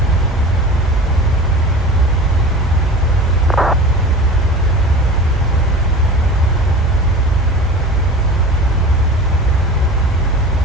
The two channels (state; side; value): normal; both; correlation 0.36